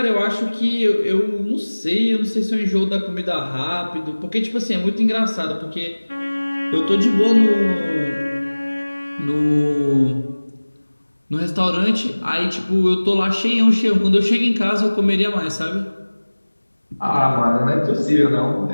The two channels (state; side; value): inverted; both; correlation -1.00